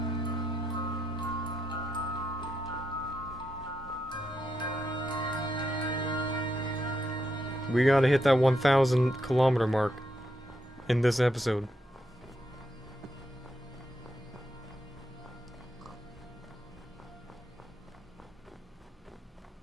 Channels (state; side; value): normal; both; correlation 0.82